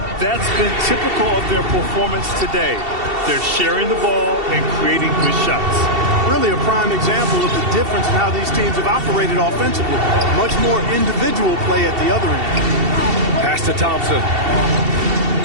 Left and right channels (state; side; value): late; left; 2.7 ms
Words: That's been typical of their performance today. They're sharing the ball and creating good shots. Really a prime example of the difference in how these teams have operated offensively. Much more individual play at the other end. Pass to Thompson.